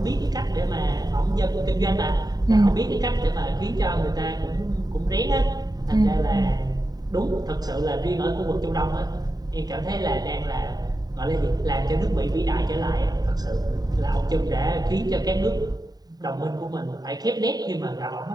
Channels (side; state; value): left; late; 0.19 ms